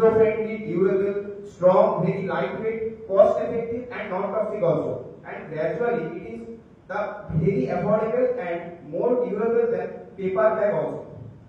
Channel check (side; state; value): both; identical; correlation 1.00